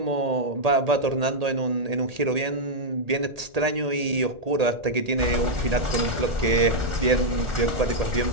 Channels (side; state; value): left; late; 1.8 ms